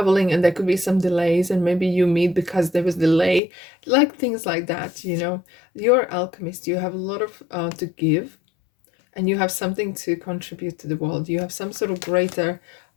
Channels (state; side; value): drops out; right; at 3.4 s